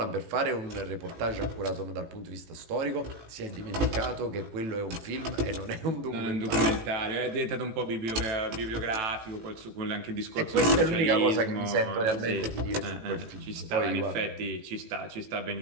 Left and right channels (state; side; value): late; left; 18 ms